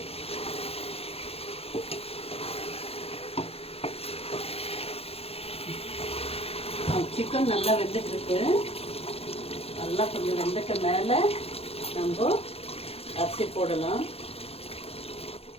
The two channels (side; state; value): right; late; 0.29 ms